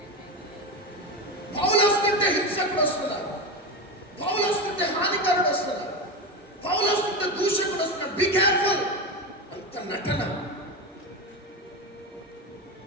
పౌలు వస్తుంటే హింసకుడు వస్తున్నాడు, పౌలు వస్తుంటే హానికరుడు వస్తున్నాడు, పౌలు వస్తుంటే దూషకుడు వస్తున్నాడు. Be careful. అంత నటన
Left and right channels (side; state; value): both; normal; correlation 0.18